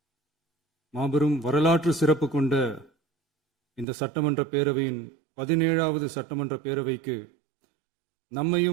மாபெரும் வரலாற்று சிறப்பு கொண்ட இந்த சட்டமன்ற பேரவையின் 17வது சட்டமன்ற பேரவைக்கு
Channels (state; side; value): drops out; left; at 3.9 s